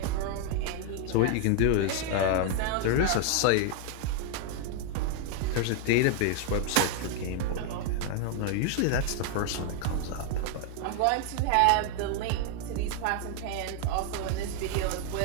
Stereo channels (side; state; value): both; different; correlation 0.00